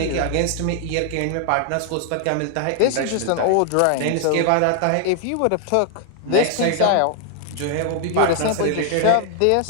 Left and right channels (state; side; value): different; both; correlation 0.00